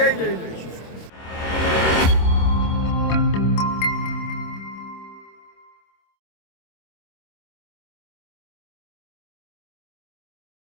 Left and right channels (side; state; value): right; late; 26 ms